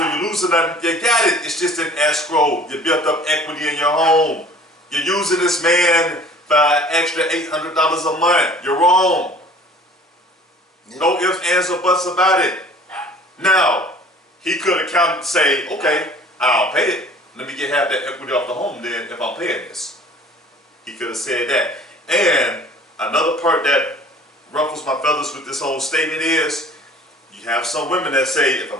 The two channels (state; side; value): normal; both; correlation 0.49